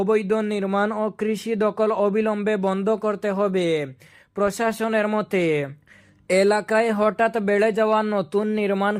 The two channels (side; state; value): both; identical; correlation 1.00